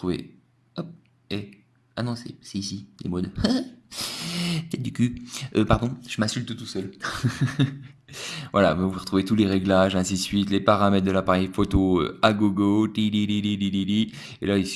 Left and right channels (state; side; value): identical; both; correlation 1.00